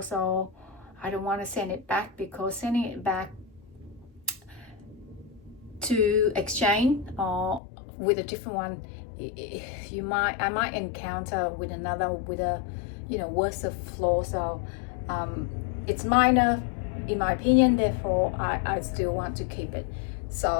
so I don't want to send it back, because sending it back to exchange or with a different one, I might encounter with another with a, you know, worse of flaw. So it's minor in my opinion, therefore I still want to keep it.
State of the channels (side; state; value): right; drops out; at 7.6 s